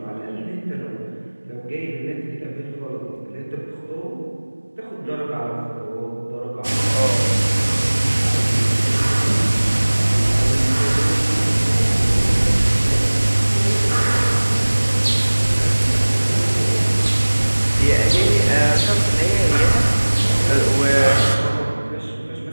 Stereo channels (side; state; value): both; inverted; correlation -1.00